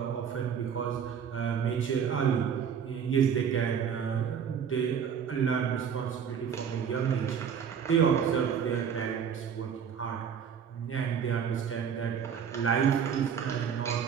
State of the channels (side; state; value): left; quieter; 7.5 dB